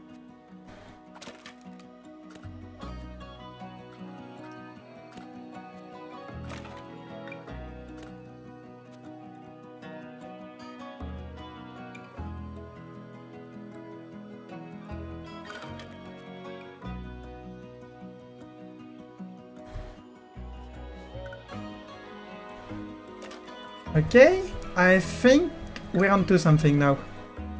Okay, I think we're onto something now.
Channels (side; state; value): both; identical; correlation 1.00